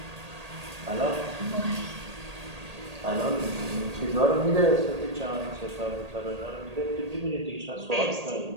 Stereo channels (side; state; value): left; late; 1.8 ms